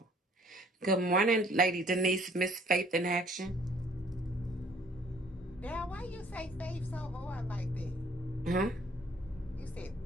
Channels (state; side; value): normal; both; correlation 0.58